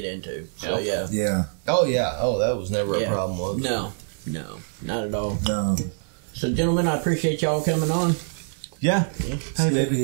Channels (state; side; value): silent; left; digital silence